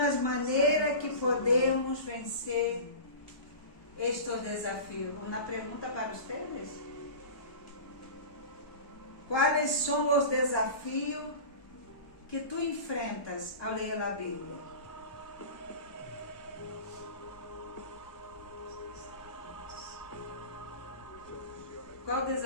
maneiras que podemos vencer estes desafios. Uma pergunta para vocês. Quais são os desafios que tu enfrentas ao ler a Bíblia? Qual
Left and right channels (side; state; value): right; late; 1.2 ms